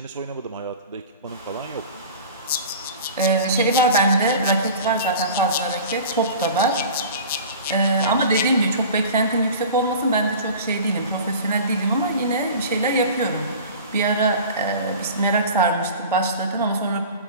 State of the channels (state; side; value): inverted; both; correlation -0.38